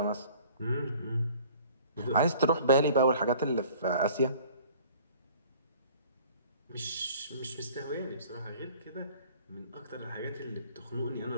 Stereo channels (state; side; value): inverted; both; correlation -0.50